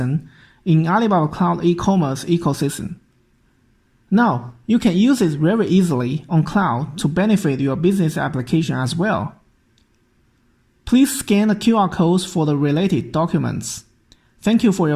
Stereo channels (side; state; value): both; identical; correlation 1.00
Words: in Alibaba Cloud e-commerce ecosystem. Now, you can use it very easily on cloud to benefit your business application as well. Please scan the QR codes for the related documents. Thank you for